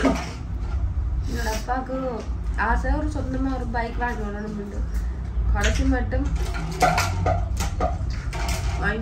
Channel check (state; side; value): identical; both; correlation 1.00